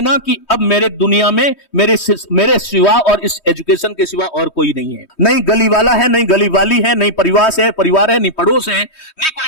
कि अब मेरे दुनिया में मेरे सिवा और इस एजुकेशन के सिवा और कोई नहीं है। नहीं गली वाला है, नहीं गली वाली है, नहीं परिवार है, नहीं पड़ोस है, नहीं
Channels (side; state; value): right; late; 3.2 ms